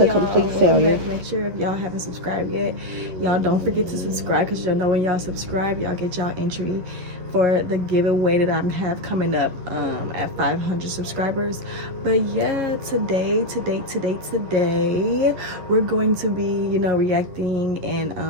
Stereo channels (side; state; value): left; late; 11 ms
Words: complete failure. Make sure if y'all haven't subscribed yet, y'all don't forget to subscribe, because y'all know when y'all subscribe, y'all get y'all entry for the giveaway that I have coming up at 500 subscribers. But yeah, today we're going to be, you know, reacting